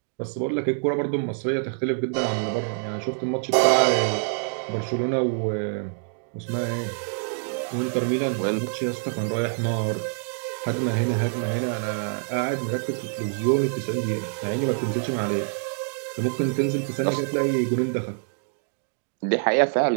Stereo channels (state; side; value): silent; left; digital silence